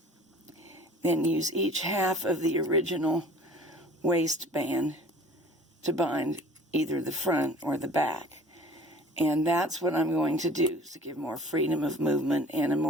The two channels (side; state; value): both; normal; correlation 0.46